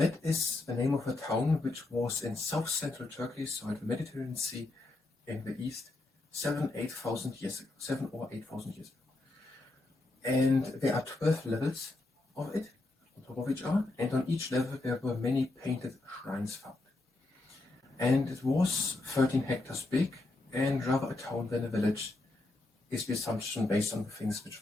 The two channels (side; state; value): right; quieter; 3.0 dB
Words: is the name of a town which was in south-central Turkey, so at the Mediterranean Sea in the east, 7,000 years ago. And there are 12 levels of it, on top of each other, and on each level there were many painted shrines found. And it was 13 hectares big, and rather a town than a village, is the assumption based on the things